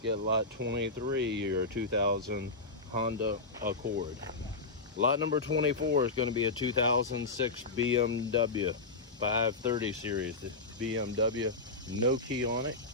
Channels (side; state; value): right; quieter; 3.5 dB